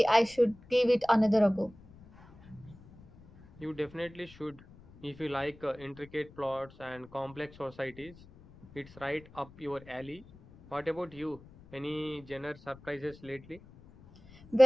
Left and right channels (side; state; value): left; noise; rumble, 22 dB below the sound